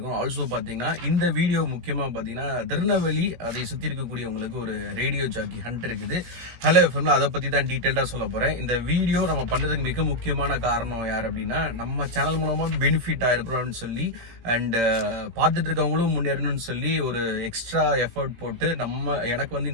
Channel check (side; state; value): left; late; 17 ms